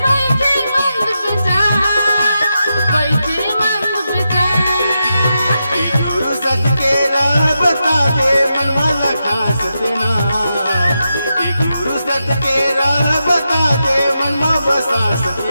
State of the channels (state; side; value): inverted; both; correlation -0.87